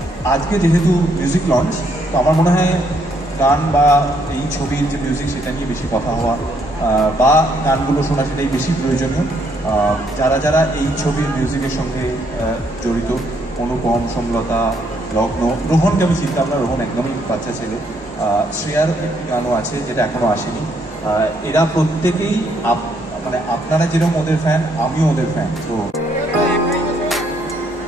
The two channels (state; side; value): normal; both; correlation 0.71